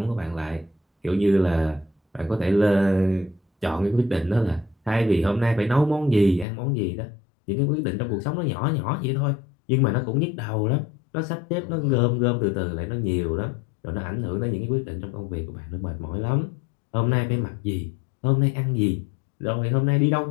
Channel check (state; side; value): drops out; right; at 6.5 s